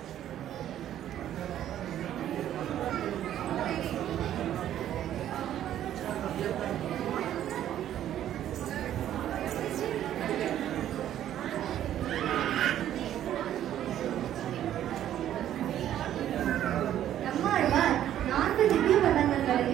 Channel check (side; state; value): left; quieter; 11.5 dB